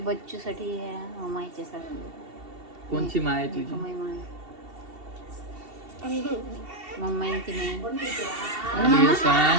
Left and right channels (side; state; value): left; late; 2.7 ms